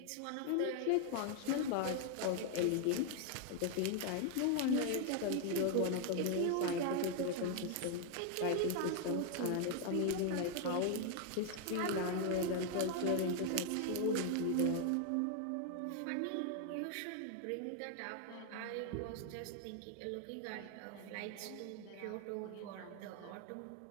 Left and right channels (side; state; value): both; different; correlation 0.00